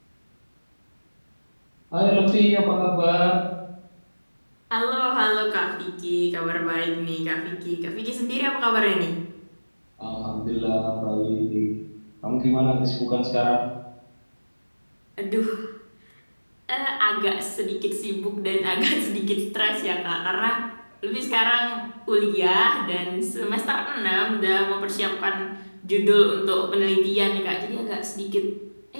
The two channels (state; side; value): inverted; both; correlation -1.00